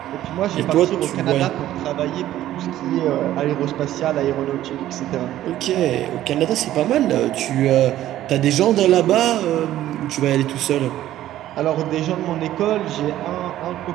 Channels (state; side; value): quieter; left; 13.4 dB